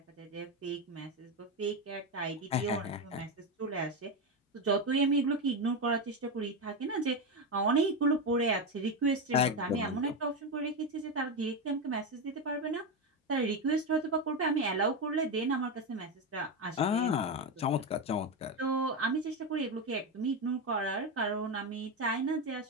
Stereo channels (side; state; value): both; normal; correlation 0.12